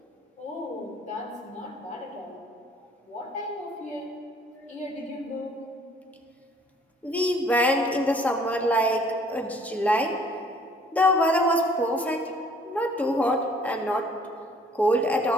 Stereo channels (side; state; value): both; normal; correlation 0.57